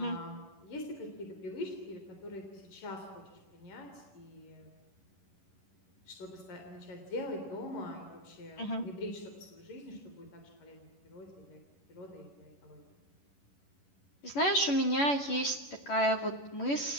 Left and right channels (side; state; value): right; late; 11 ms